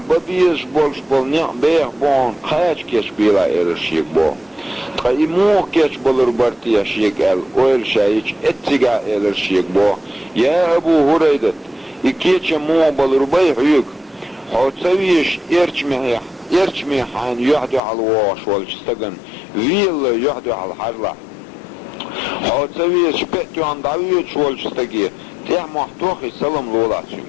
بول نيق بيخ بون قاش كش بيلا الشيك بو قايمو كش بول ربارتيا شيك اويل شايش اتسيقا الشيك بو يا ابو هريرة اكيش مو بول رباي حيوك حوتسويش ارچمي حان يحدو على الواش والجستقن ويل يحدو على الحرلة حوتسويش بيتو عن دعويش والجستقية تيح محتوخي سلام لولاتشم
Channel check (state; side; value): drops out; right; at 17.8 s